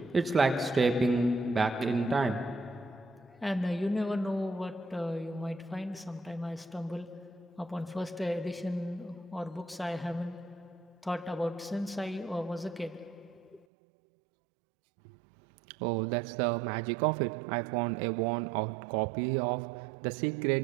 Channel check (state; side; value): drops out; left; at 13.7 s